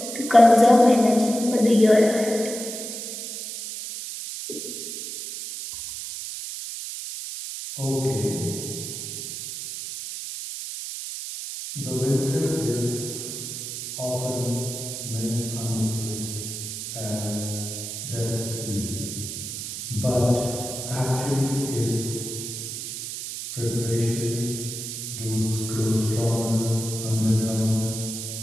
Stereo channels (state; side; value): noise; right; hiss, 7 dB below the sound